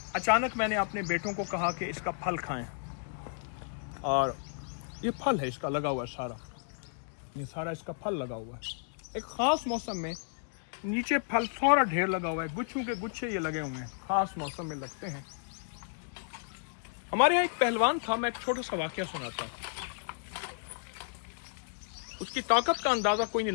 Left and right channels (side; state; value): right; silent; digital silence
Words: अचानक मैंने अपने बेटों को कहा कि इसका फल खाएं, और ये फल है इसका लगा हुआ है सारा, ये सारा इसका फल लगा हुआ है। एक ख़ास मौसम में नीचे फल सारा ढेर लगा हुआ है, गुच्छों के गुच्छे ये लगे हुए हैं, ख़ास मौसम में लगते हैं। हमारे यहाँ एक पहलवान था, मैं एक छोटा सा वाक़या सुनाता हूँ। उसकी ताकत का अंदाज़ा कोई नहीं